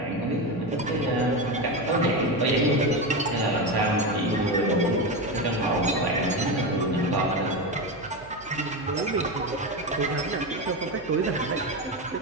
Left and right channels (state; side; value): noise; right; hum, 23 dB below the sound